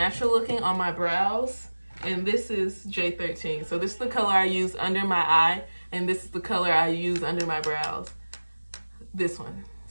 looking on my brows. And this is J13. So this is the color I use under my eye. And this is the color I use under my brows. This one.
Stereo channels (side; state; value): both; inverted; correlation -1.00